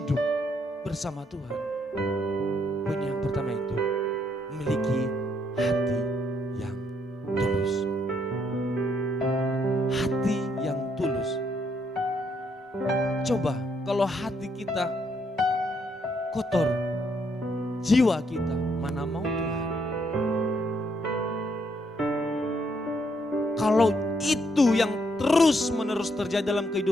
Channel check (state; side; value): normal; both; correlation 0.73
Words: bersama Tuhan, poin yang pertama itu memiliki hati yang tulus. Hati yang tulus. Coba kalau hati kita kotor, jiwa kita mana mau Tuhan. Kalau itu yang terus menerus terjadi dalam